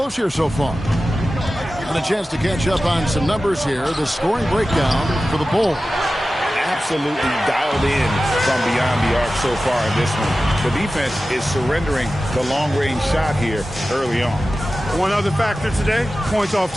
here so far. And a chance to catch up on some numbers here. The scoring breakdown for the Bulls. Absolutely dialed in from beyond the arc so far in this one. The defense is surrendering the long-range shot here early on. One other factor today, points off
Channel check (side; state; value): both; normal; correlation 0.95